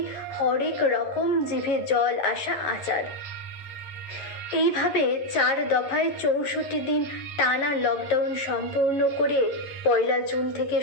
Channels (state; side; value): late; right; 11 ms